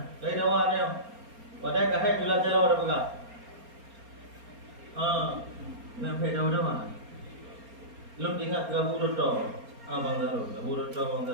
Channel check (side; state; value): left; late; 4.3 ms